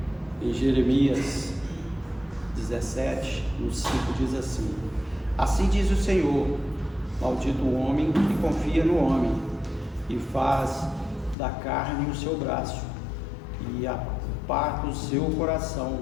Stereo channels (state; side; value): drops out; right; at 11.4 s